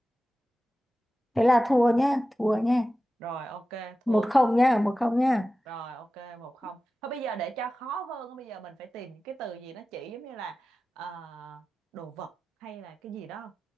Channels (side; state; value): both; normal; correlation 0.94